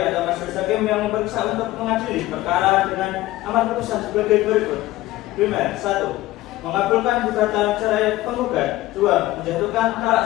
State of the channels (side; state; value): right; quieter; 16.9 dB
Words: atau Majelis Hakim yang memeriksa untuk mengadili perkara dengan amar putusan sebagai berikut. Primer, 1. Mengabulkan gugatan cerai penggugat. 2. Menjatuhkan